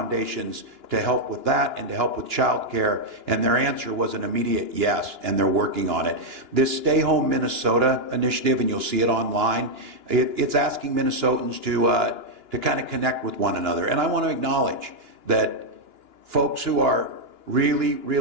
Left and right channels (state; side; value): late; left; 2.9 ms